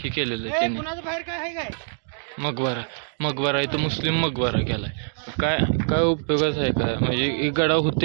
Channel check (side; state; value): left; silent; digital silence